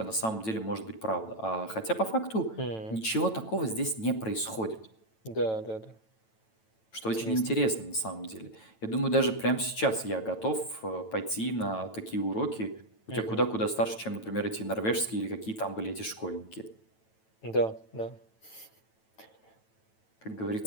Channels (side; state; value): right; late; 9.1 ms